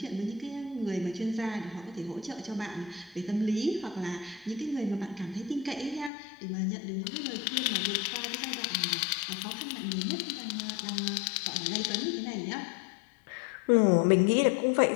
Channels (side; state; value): right; drops out; at 6.1 s